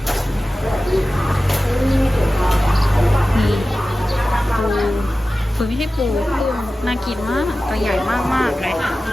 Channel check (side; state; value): both; normal; correlation 0.95